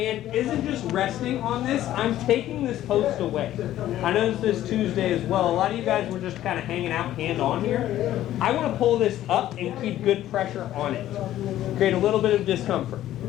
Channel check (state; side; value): quieter; right; 13.2 dB